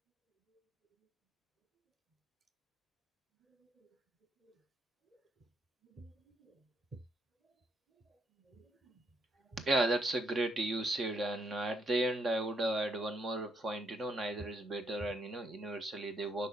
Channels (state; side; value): normal; both; correlation 0.74